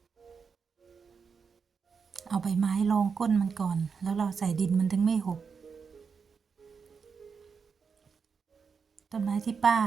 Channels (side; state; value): left; quieter; 5.8 dB